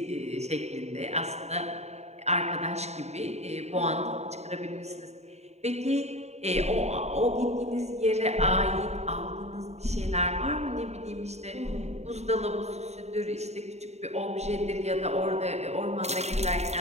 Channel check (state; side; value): late; left; 0.32 ms